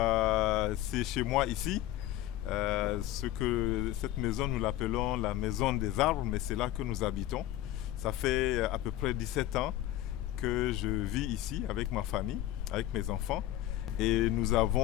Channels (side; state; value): right; quieter; 14.2 dB